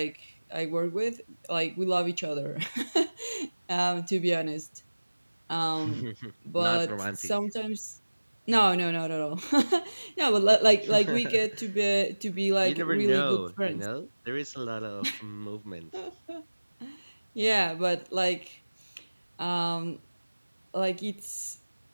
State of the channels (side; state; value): both; inverted; correlation -1.00